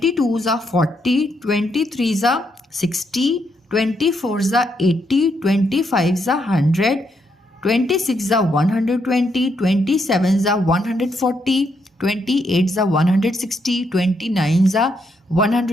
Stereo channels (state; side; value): normal; both; correlation 0.77